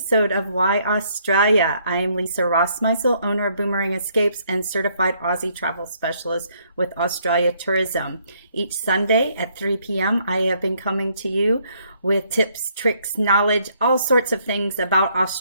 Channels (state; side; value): inverted; both; correlation -0.68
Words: of Why Australia. I am Lisa Rossmeissl, owner of Boomerang Escapes and certified Aussie travel specialist with Australia Tourism. Each Sunday at 3 p.m., I have been coming to you with tips, tricks, knowledge, all sorts of things about